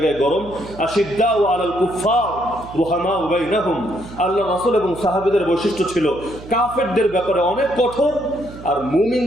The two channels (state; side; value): noise; right; hum, 16 dB below the sound